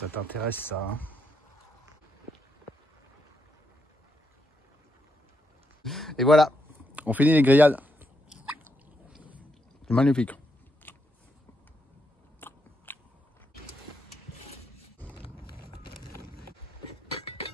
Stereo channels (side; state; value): both; normal; correlation 0.80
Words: t'intéresse ça, hein? Et voilà, on finit les grillades. C'est magnifique.